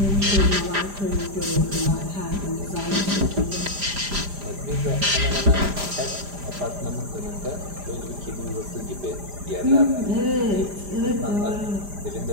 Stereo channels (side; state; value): left; late; 5.0 ms